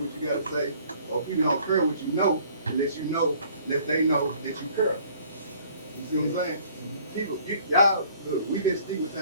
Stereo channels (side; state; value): both; inverted; correlation -0.56